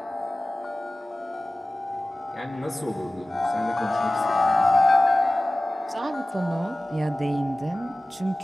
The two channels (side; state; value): both; normal; correlation 0.97